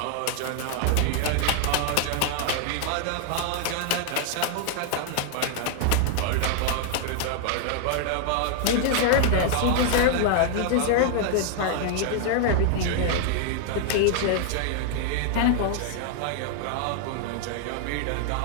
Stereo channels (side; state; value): both; different; correlation 0.00